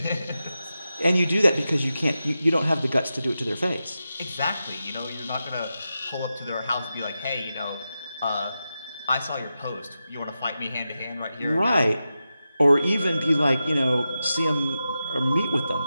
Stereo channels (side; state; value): both; inverted; correlation -0.91